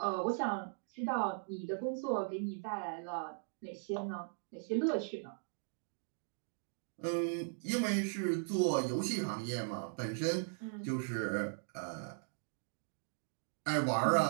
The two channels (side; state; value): left; silent; digital silence